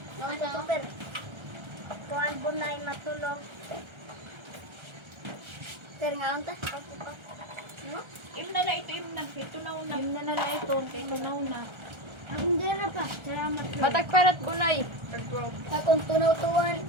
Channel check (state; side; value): late; left; 1.3 ms